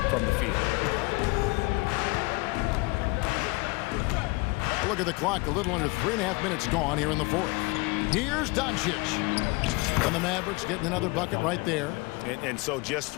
from the field. Look at the clock. A little under 3.5 minutes gone here in the fourth. Here's Doncic. And the Mavericks getting another bucket right there. And so just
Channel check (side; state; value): right; quieter; 25.6 dB